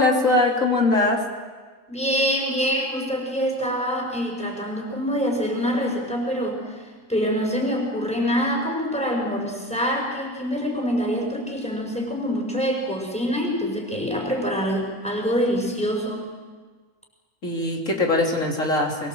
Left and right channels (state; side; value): normal; both; correlation 0.32